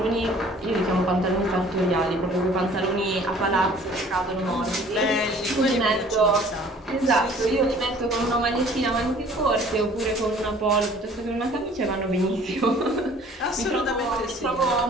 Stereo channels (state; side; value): normal; both; correlation 0.52